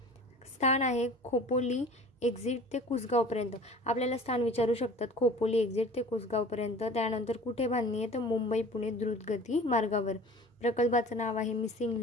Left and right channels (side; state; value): both; normal; correlation 0.43